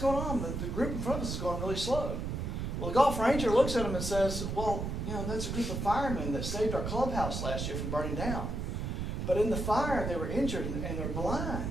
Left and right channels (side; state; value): right; noise; rumble, 3 dB below the sound